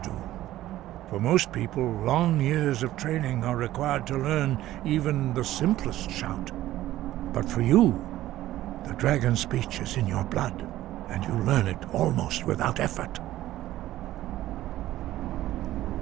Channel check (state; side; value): quieter; left; 14.5 dB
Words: For most people, long years of training are required to learn even the simplest shout. But for you, the dragon speech is in your blood, and you learn it almost without effort.